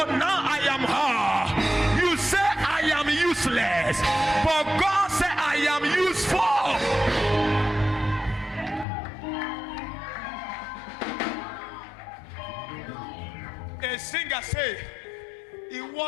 now I am her. You say I am useless, but God said I am useful. A singer say,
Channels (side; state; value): right; drops out; at 8.8 s